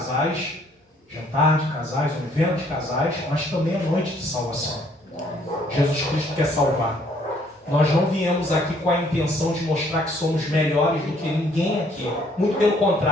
jantar de casais, um evento de casais, mas também é noite de salvação. Jesus Cristo quer salvar. Nós não viemos aqui com a intenção de mostrar que somos melhores do que ninguém aqui. Muito pelo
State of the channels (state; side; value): normal; both; correlation 0.63